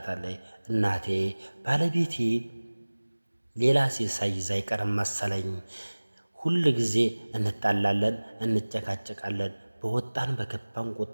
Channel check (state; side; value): inverted; both; correlation -1.00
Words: እናቴ ባለቤቴ ሌላ ሴት ሳይዝ አይቀርም መሰለኝ። ሁል ጊዜ እንጣላለን፣ እንጨቃጨቃለን። በወጣን በገባን